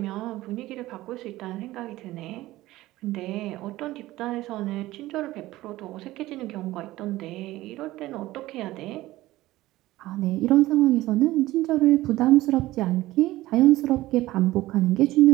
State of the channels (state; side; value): quieter; left; 17.1 dB